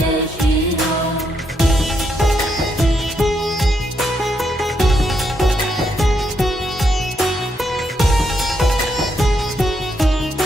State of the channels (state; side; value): normal; both; correlation 0.78